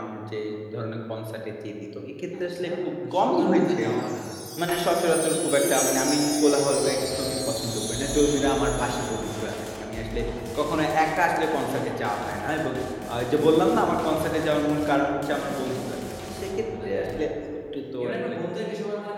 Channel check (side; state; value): both; identical; correlation 1.00